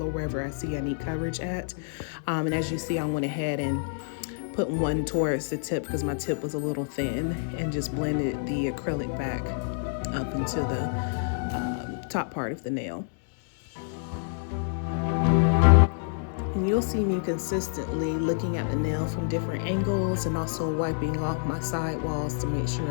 or wherever I see I need coverage at. And as you see, I went ahead and put one towards the tip because my tip was a little thin, and just blended the acrylic back up into the top part of the nail. And you'll see me consistently looking at the nail from different angles and also wiping off my side walls to make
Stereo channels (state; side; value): silent; right; digital silence